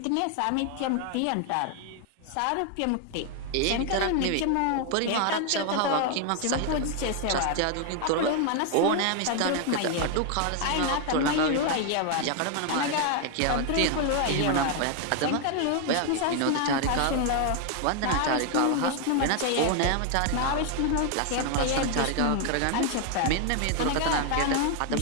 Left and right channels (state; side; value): different; both; correlation 0.00